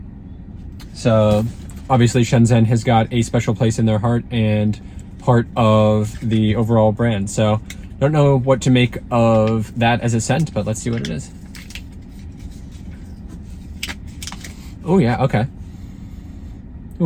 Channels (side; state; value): both; identical; correlation 1.00